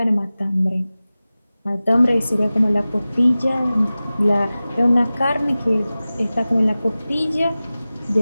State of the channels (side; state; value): both; inverted; correlation -0.97